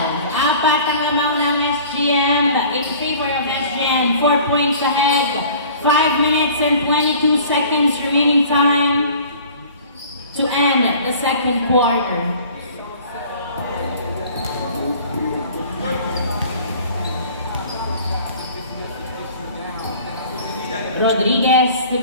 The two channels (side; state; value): both; inverted; correlation -0.47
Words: ang lamang ng SGM. In favor of SGM. 4 points ahead. 5 minutes and 22 seconds remaining time to end the second quarter. Rodriguez to